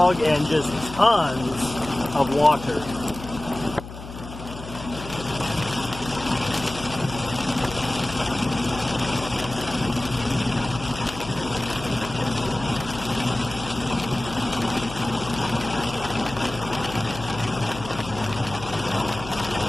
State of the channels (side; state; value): left; noise; hum, 12 dB below the sound